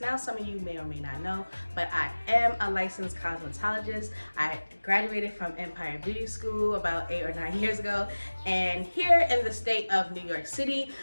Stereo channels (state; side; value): inverted; both; correlation -1.00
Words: some of you may or may not know, but I am a licensed cosmetologist. I graduated from Empire Beauty School about 8 or 9 years ago. And here in the state of New York City,